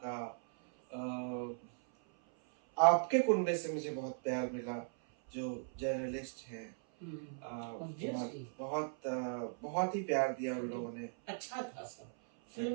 का। आपके कुनबे से मुझे बहुत प्यार मिला, जो जर्नलिस्ट हैं, बहुत ही प्यार दिया उन लोगों ने। अच्छा था सब,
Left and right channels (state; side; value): silent; left; 52 dB below the other